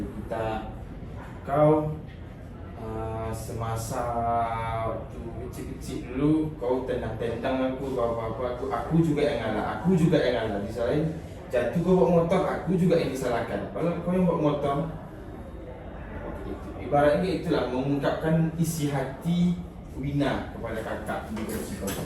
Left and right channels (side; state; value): both; identical; correlation 1.00